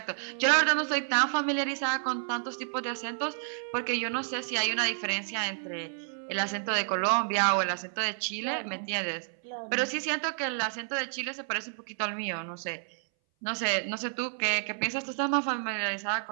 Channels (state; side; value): silent; left; 58 dB below the other